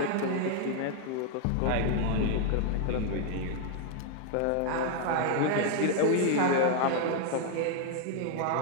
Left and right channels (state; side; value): different; both; correlation 0.00